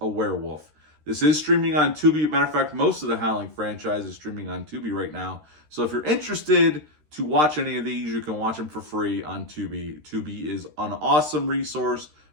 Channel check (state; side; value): late; left; 13 ms